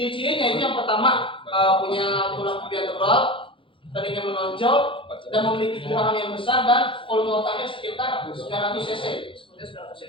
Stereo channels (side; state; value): right; late; 0.25 ms